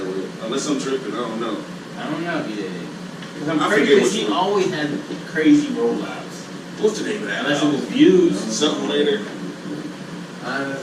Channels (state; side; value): identical; both; correlation 1.00